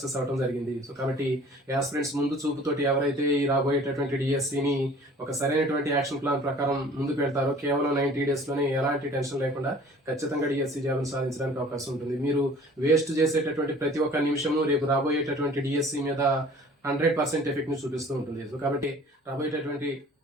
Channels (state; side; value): normal; both; correlation 0.49